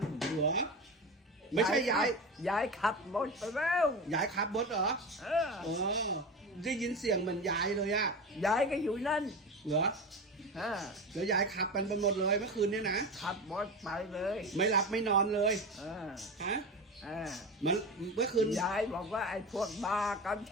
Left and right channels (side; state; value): both; normal; correlation 0.25